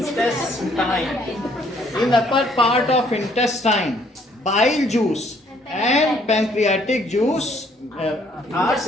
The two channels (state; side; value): normal; both; correlation 0.64